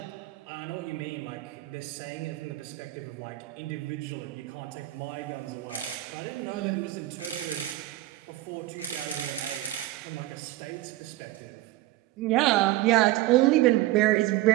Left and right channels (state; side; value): quieter; left; 16.4 dB